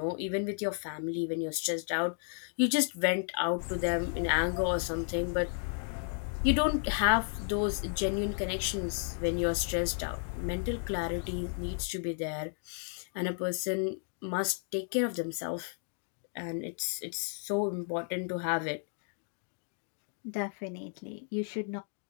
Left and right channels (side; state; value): right; silent; 56 dB below the other